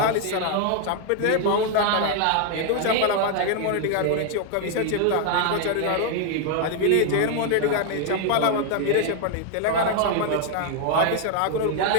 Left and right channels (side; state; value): both; different; correlation 0.00